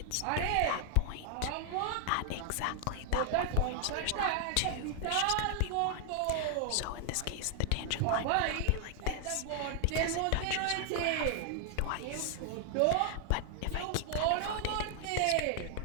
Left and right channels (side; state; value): both; different; correlation 0.00